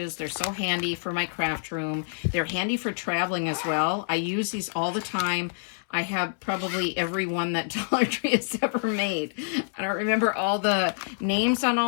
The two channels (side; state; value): right; silent; 60 dB below the other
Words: They're so handy for my craft room. They're handy for traveling as well. I use these all the time. I have probably every one that Dollar Tree has ever made. I don't remember all the names on